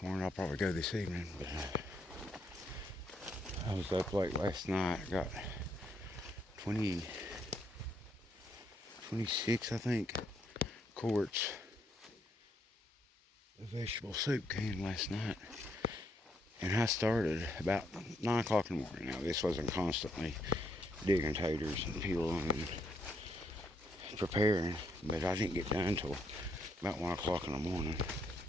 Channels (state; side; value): normal; both; correlation 0.74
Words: morning. I'll probably go this evening, but I was up late last night. I got 26, I think, quarts of vegetable soup can last night. And I started about 9 o'clock in the morning. Now, this wasn't constantly digging taters and peeling and preparing, but I didn't get done until about 1 o'clock in the morning.